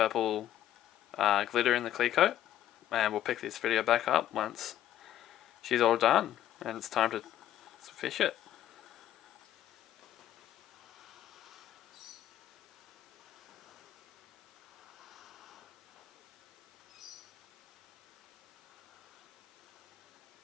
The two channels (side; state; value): right; quieter; 12.0 dB